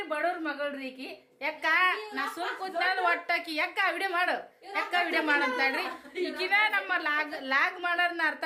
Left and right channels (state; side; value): identical; both; correlation 1.00